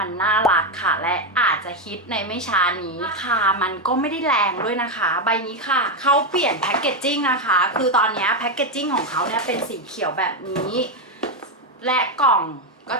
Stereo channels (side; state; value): both; normal; correlation 0.07